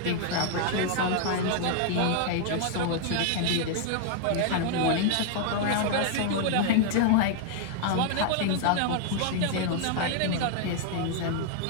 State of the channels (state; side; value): different; both; correlation 0.00